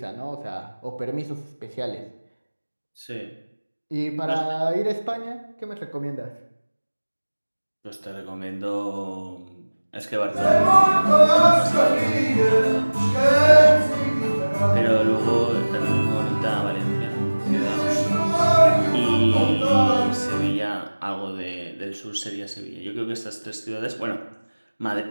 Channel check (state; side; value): inverted; both; correlation -1.00